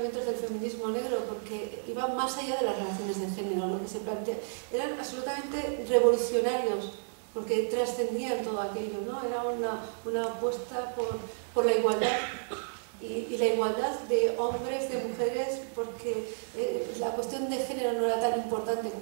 del feminismo negro, porque iban más allá de las relaciones de género. Lo que se plantea eran absolutamente revolucionarios, porque trascendían todo aquello, ¿no? Era una apuesta por la igualdad y la igualdad de hombres, de mujeres, porque la cuestión de género no era tan importante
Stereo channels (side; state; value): left; silent; digital silence